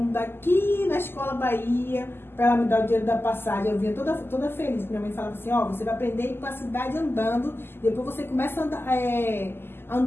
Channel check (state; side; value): late; right; 0.11 ms